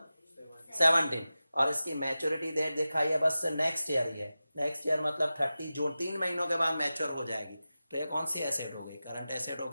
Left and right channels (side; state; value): both; inverted; correlation -0.95